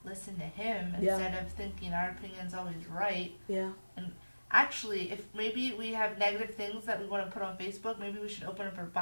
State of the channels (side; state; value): both; inverted; correlation -1.00